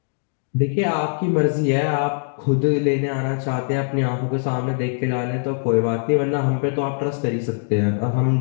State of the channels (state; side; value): silent; right; digital silence